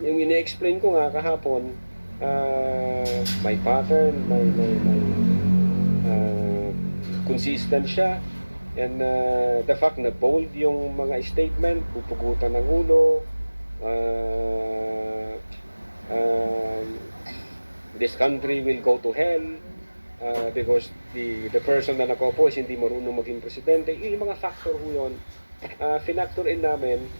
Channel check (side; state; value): both; inverted; correlation -1.00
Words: Yung ine-explain ko nga kahapon, may pattern, may consistent siya, and the fact na bold yung mga statement, pupugutan ng ulo, this country will go to hell because the person na nakopo is hindi marunong maging presidente. Yung mga factor ho yun, finactor in namin.